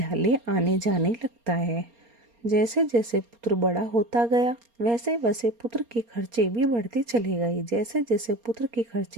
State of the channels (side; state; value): left; late; 4.3 ms